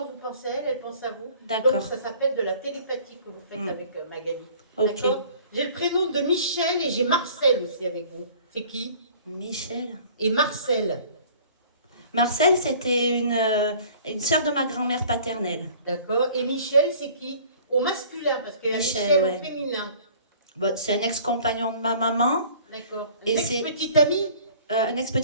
vous pensez à elle, elle pense à vous. D'accord. Donc ça s'appelle de la télépathie que vous faites Mm. avec Magali. Ok. D'accord. J'ai le prénom de Michel et j'ai Marcel aussi avec vous. C'est qui? Michel. Et Marcel. Marcel, c'était une sœur de ma grand-mère paternelle. D'accord. Et Michel, c'est qui? Au masculin, parce qu'il y a Michel, Michel ouais. au féminin. Bon, c'est un ex-compagnon de ma maman, D'accord. Et Ex-petite amie? un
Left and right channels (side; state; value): both; inverted; correlation -0.50